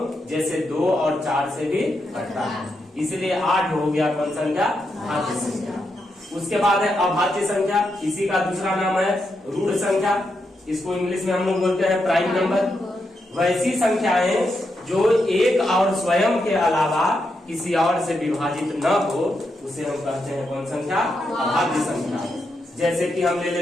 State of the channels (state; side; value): normal; both; correlation 0.83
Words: जैसे 2 और 4 से भी कटता है। इसलिए 8 हो गया कौन संख्या, भाज्य संख्या। उसके बाद है अभाज्य संख्या। इसी का दूसरा नाम है रूढ़ संख्या। इसको इंग्लिश में हम लोग बोलते हैं प्राइम नंबर। वैसी संख्याएं जो एक और स्वयं के अलावा किसी और से विभाजित न हो, उसे हम कहते हैं कौन संख्या, अभाज्य संख्या। जैसे कि हम ले